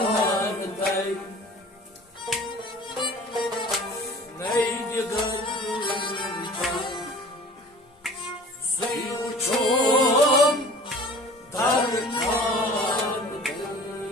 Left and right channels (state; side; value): normal; both; correlation 0.45